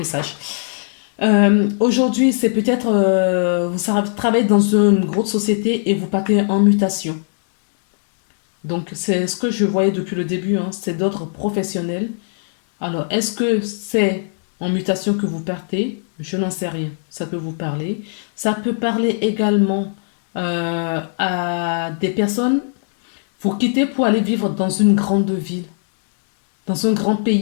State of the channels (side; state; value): right; silent; digital silence